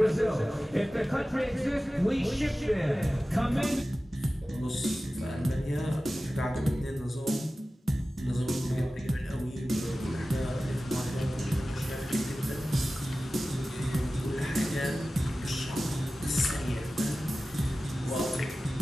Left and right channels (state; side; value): normal; both; correlation 0.96